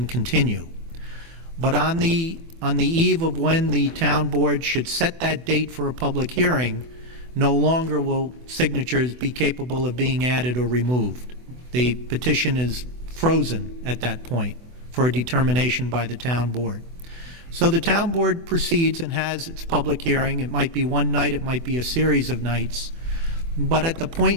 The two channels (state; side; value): late; left; 24 ms